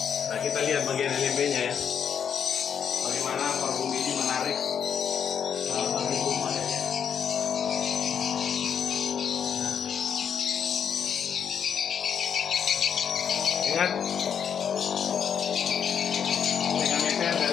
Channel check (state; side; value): quieter; right; 7.8 dB